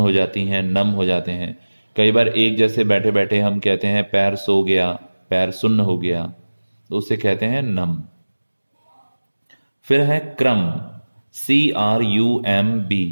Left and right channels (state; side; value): inverted; both; correlation -1.00